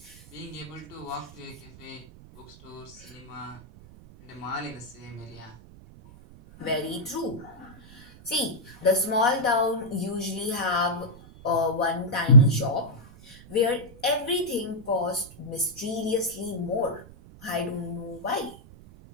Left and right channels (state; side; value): noise; right; rumble, 20 dB below the sound